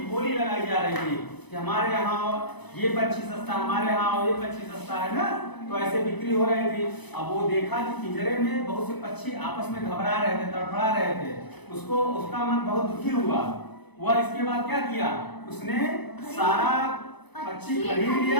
बोली लगाई जा रही थी कि हमारे यहाँ ये पक्षी सस्ता, हमारे यहाँ ये पक्षी सस्ता है ना। तो ऐसे बिक्री हो रही थी। अब वो देखा कि पिंजरे में बहुत से पक्षी आपस में घबरा रहे थे, तड़फड़ा रहे थे। उसका मन बहुत दुखी हुआ। वह इसके बाद क्या किया, उसने सारा पक्षी खरीद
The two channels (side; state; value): right; late; 0.99 ms